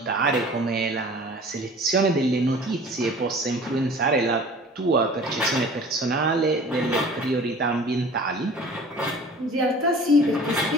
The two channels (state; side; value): normal; both; correlation 0.45